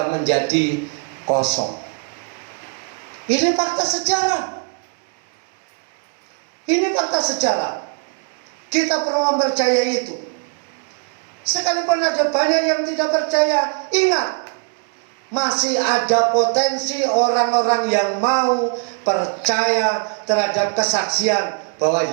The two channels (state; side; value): quieter; left; 39.6 dB